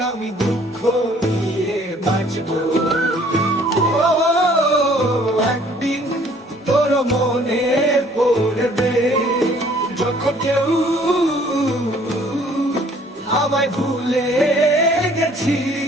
আমি দুঃখ নিয়ে বাঁচবো। একদিন তোর মনে পড়বে যখন কেউ আমায় ভুলে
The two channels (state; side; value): normal; both; correlation 0.57